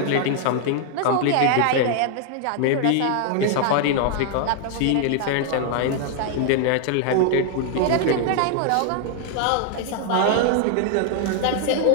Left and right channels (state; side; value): different; both; correlation 0.00